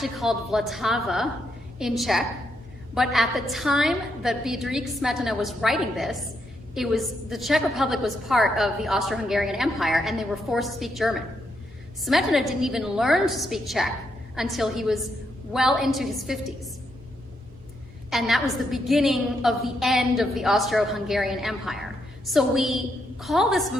called Vltava in Czech, but at the time that Bedřich Smetana was writing this, the Czech Republic was part of the Austro-Hungarian Empire and they were forced to speak German. Smetana didn't even learn to speak Czech until he was well into his 50s. And that was the beginning of the end of the Austro-Hungarian Empire. So we call this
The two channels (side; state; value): both; normal; correlation 0.79